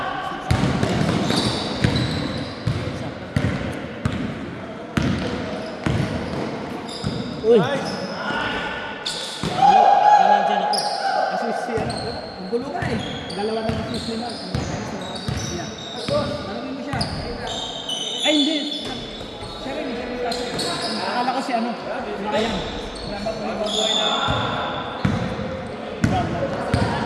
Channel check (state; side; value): identical; both; correlation 1.00